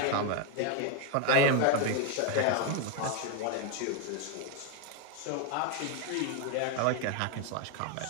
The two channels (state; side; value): different; both; correlation 0.01